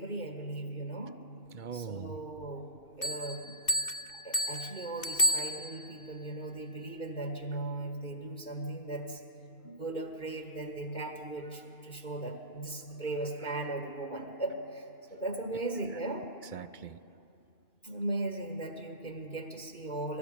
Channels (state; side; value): late; right; 2.6 ms